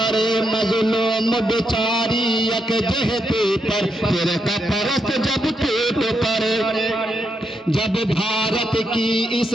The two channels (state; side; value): normal; both; correlation 0.81